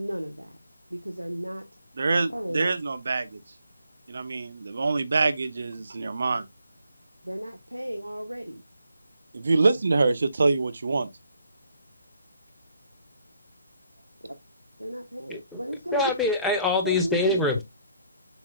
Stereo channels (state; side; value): inverted; both; correlation -0.70